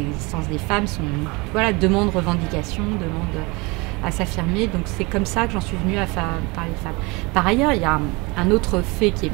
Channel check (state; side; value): quieter; left; 26.2 dB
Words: existences des femmes demandent revendication, demandent à s'affirmer. Donc c'est comme ça que j'en suis venue à parler de femmes. Par ailleurs, il y a un autre fait qui est